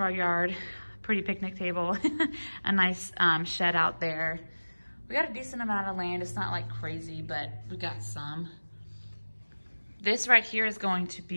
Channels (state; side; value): inverted; both; correlation -1.00